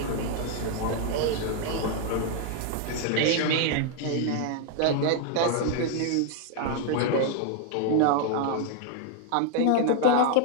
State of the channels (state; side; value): different; both; correlation 0.00